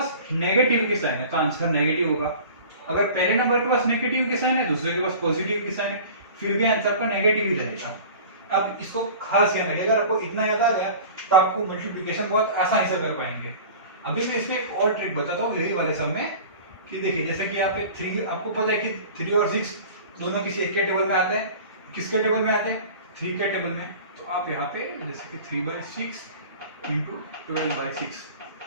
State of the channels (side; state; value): both; inverted; correlation -0.40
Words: नेगेटिव की साइन है तो आंसर नेगेटिव होगा। अगर पहले नंबर के पास नेगेटिव की साइन है, दूसरे के पास पॉजिटिव की साइन है, फिर भी आंसर का नेगेटिव ही रहेगा। आप इसको खास ध्यान रखिएगा। अगर आपको इतना याद आ गया तो आपको मल्टीप्लिकेशन बहुत आसानी से कर पाएंगे। अभी मैं इसमें एक और ट्रिक बताता हूँ यही वाले सब में कि देखिए जैसे कि यहाँ पे 3, आपको पता है कि 3 और 6 दोनों किसी एक के टेबल में आते हैं। किसके टेबल में आते हैं? 3 के टेबल में। तो आप यहाँ पे जैसे कि 3/6 इंटू 12/6,